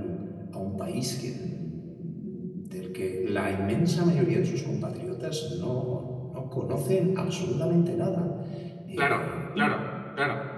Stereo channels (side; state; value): both; identical; correlation 1.00